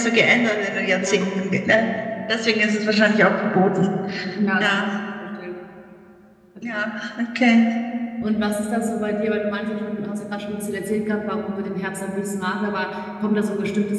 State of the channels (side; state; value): both; identical; correlation 1.00